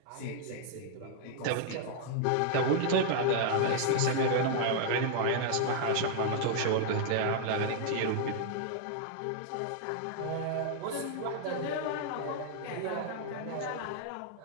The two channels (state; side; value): different; both; correlation 0.00